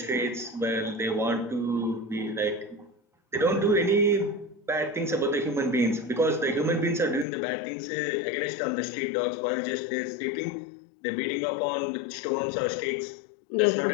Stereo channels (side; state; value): right; drops out; at 7.2 s